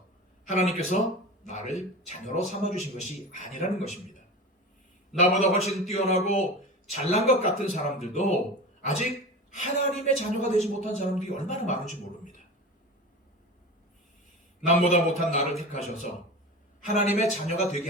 하나님께서 나를 자녀로 삼아주신 것이 아니라는 것입니다. 나보다 훨씬 뛰어나고 잘난 것 같은 사람들도 아직 하나님의 자녀가 되지 못한 사람들이 얼마나 많은지 모릅니다. 남보다 못한 나를 택하셔서 하나님의 자녀가 되게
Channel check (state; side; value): normal; both; correlation 0.30